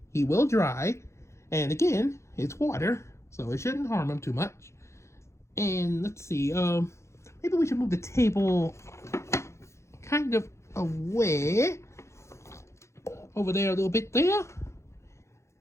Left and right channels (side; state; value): right; late; 0.14 ms